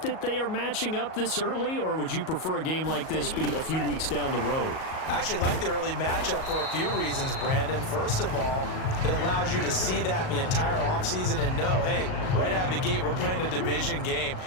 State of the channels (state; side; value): late; right; 38 ms